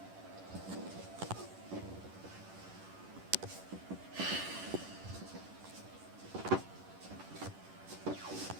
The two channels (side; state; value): left; late; 10 ms